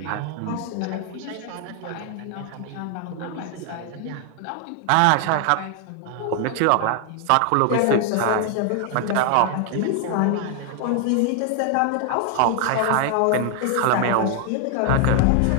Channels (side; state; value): both; different; correlation 0.00